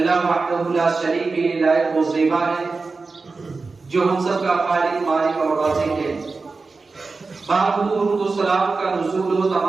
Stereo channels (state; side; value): quieter; left; 4.1 dB